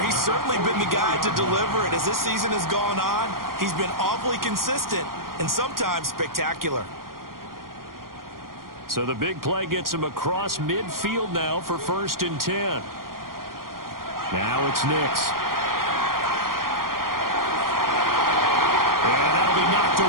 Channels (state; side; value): late; left; 0.92 ms